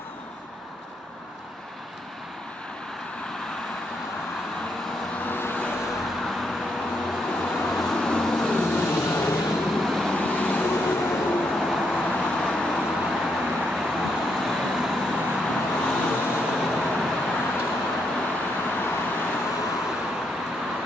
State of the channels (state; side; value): normal; both; correlation 0.78